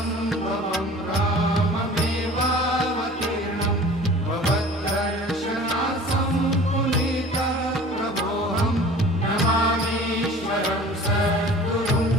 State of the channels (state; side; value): normal; both; correlation 0.44